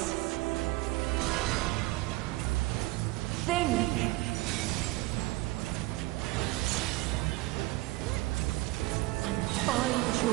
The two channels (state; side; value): quieter; left; 20.3 dB